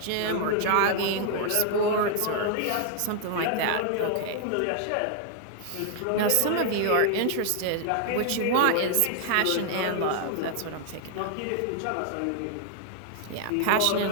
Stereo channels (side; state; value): both; different; correlation 0.00